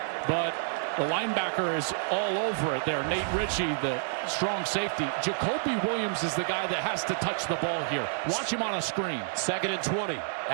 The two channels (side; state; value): left; silent; digital silence